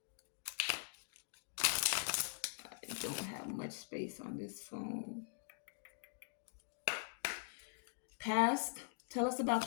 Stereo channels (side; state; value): right; silent; digital silence